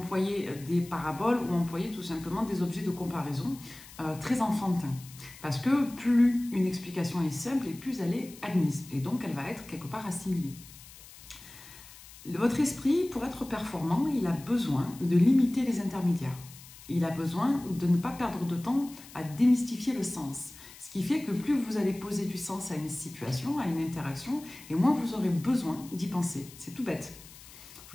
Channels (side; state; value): left; noise; hiss, 19 dB below the sound